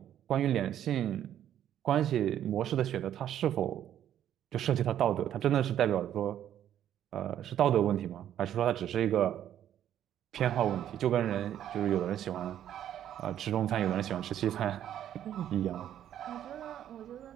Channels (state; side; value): quieter; left; 10.8 dB